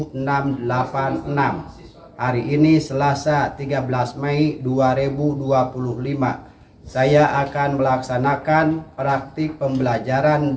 Hari ini Selasa 13 Mei 2025. Saya akan melaksanakan praktik pembelajaran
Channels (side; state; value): both; identical; correlation 1.00